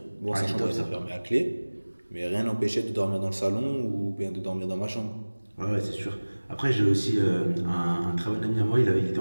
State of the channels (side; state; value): both; inverted; correlation -1.00